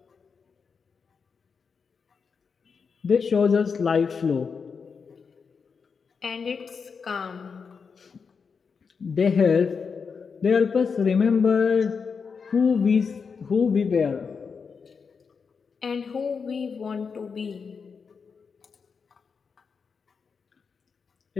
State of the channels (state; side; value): quieter; right; 5.6 dB